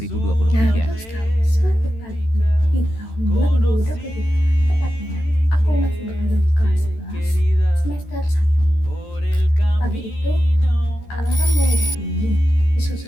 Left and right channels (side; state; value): right; late; 13 ms